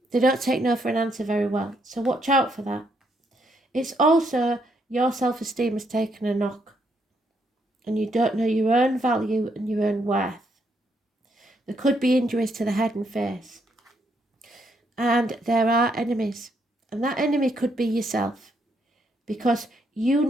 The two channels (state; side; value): normal; both; correlation 0.75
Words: They don't take no for an answer very well, so watch out for that. It's also your self-esteem has taken a knock, and you don't know your own value and your own worth. There could be injuries to the head and face, and there are enemies, and that enemy could be yourself, because you